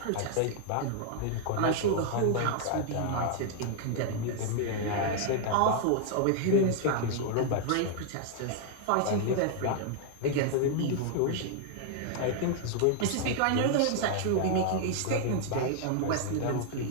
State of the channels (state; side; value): different; both; correlation 0.00